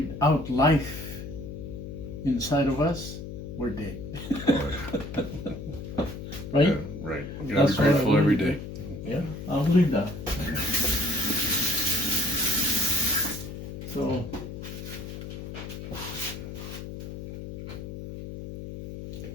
life inside of us, we're dead. Oh, yeah. Right? Yeah, right. You gotta be That's what I grateful every believe. day. Yeah, I'll believe that. So,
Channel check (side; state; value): left; noise; hum, 9 dB below the sound